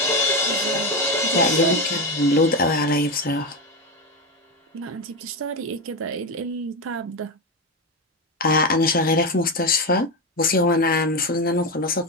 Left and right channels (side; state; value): both; normal; correlation 0.14